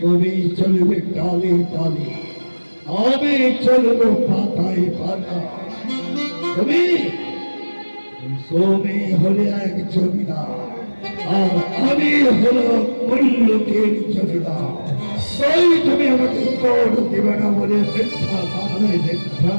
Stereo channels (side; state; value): both; inverted; correlation -1.00